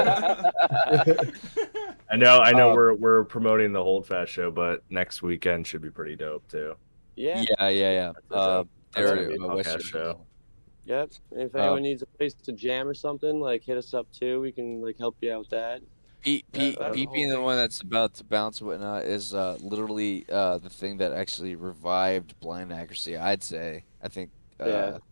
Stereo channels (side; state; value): both; inverted; correlation -1.00